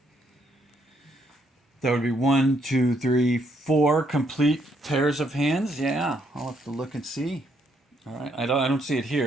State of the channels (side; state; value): both; normal; correlation 0.72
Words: That would be 1, 2, 3, 4 complete pairs of hands. Yeah, I'll have to look and see. All right, I don't see it